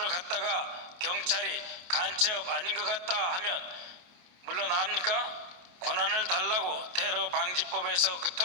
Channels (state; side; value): late; left; 28 ms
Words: 갔다가 경찰이 간첩 아닌 것 같다 하면 물러납니까? 권한을 달라고 테러 방지법에서